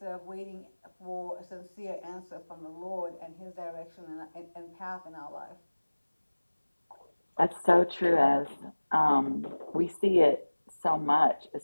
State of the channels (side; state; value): both; inverted; correlation -1.00